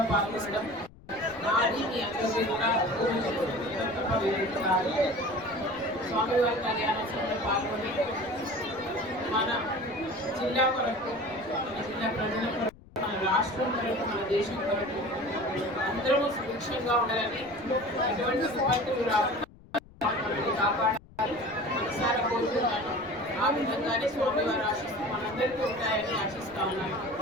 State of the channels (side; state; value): left; noise; rumble, 22 dB below the sound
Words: పాల్గొనడం నాది మీ అందరికీ కూడా స్వామివారి కళ్యాణోత్సవంలో పాల్గొని మన జిల్లా కొరకు, మన జిల్లా ప్రజల కొరకు, మన రాష్ట్రం కొరకు, మన దేశం కొరకు అందరూ సుభిక్షంగా ఉండాలని, ఎటువంటి విపత్తులు రాకుండా కాపాడాలని మనసారా కోరుతున్నాను. ఆ విధంగానే స్వామివారి ఆశిస్తూ మనందరికీ ఉంటాయని ఆశిస్తా ఉన్నాను.